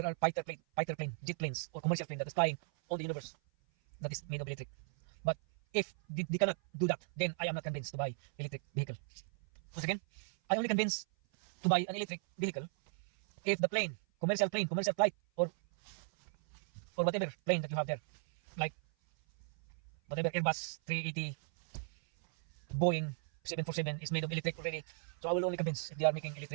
are fighter plane, jet planes, or commercial plane that is flying on the universe that is made of electric. But if they cannot do that, then I am not convinced to buy electric vehicle. Once again, I only convinced to buy an electric vehicle if the plane, commercial flight, or whatever plane that you have there, like whatever Airbus 380, Boeing 747 is made of electric already. So I will only convince if they are making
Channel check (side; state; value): left; silent; 53 dB below the other